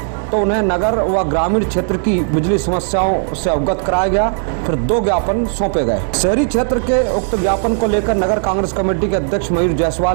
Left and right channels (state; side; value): silent; left; digital silence